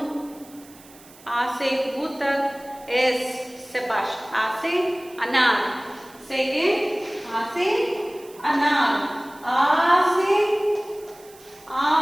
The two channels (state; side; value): noise; right; hiss, 23 dB below the sound